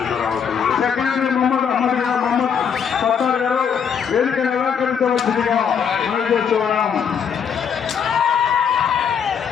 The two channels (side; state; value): right; quieter; 7.3 dB